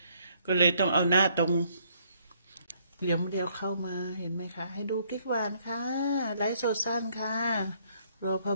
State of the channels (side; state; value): both; inverted; correlation -0.67